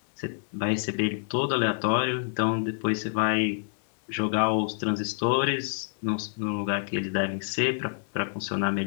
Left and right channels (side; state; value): right; silent; digital silence